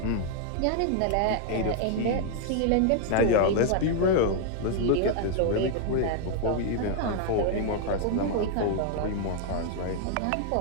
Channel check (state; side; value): different; both; correlation 0.00